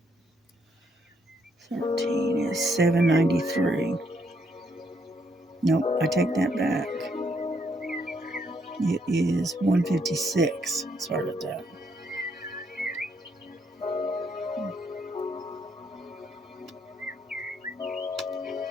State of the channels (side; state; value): both; normal; correlation 0.73